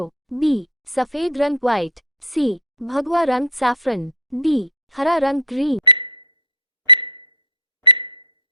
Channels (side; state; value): both; normal; correlation 0.13